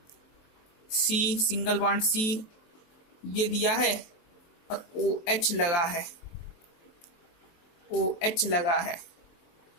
C सिंगल बॉन्ड C ये दिया है और OH लगा है, OH लगा है,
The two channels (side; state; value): right; late; 23 ms